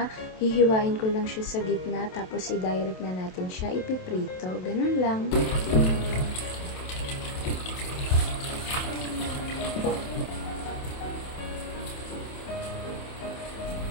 Hihiwain ko lang siya sa gitna tapos i-direct na natin siya ipiprito. Ganun lang.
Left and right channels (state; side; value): late; right; 27 ms